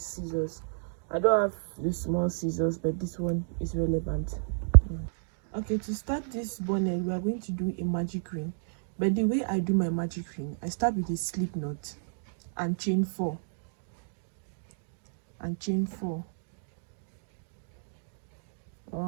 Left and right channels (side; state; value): left; silent; digital silence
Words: I don't have the small scissors, but this one is relevant. Okay, to start this bonnet, we are going to do a magic ring. But the way I do my magic ring, I start with a slip knot and chain 4. And chain 4.